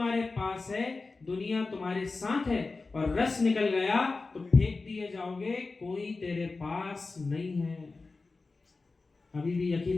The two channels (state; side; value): quieter; right; 3.8 dB